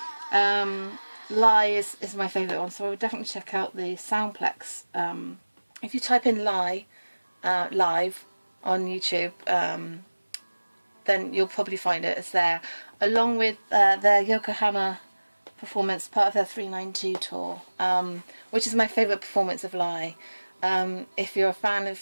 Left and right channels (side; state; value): both; inverted; correlation -1.00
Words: Lie is my favourite one, so I would definitely check out the Soundplex. If you type in Lie live on YouTube, then you'll probably find it. It's there, along with their Yokohama performance, part of their 392 tour, which is my favourite performance of Lie. If you're a fan of